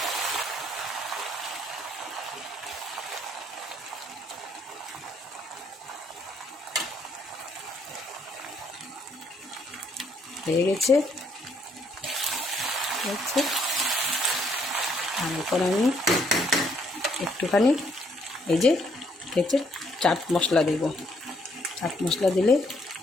হয়ে গেছে, হচ্ছে। আর এখন আমি একটুখানি এই যে হচ্ছে চাট মশলা দেব। চাট মশলা দিলে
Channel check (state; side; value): normal; both; correlation 0.69